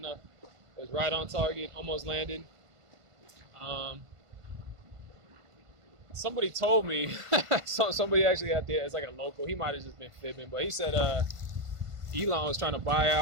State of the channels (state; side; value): late; left; 1.5 ms